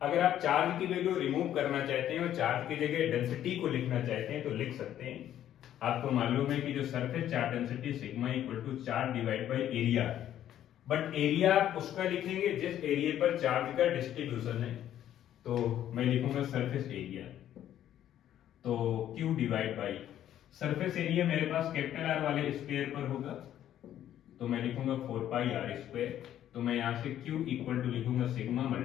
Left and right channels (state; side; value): quieter; right; 11.4 dB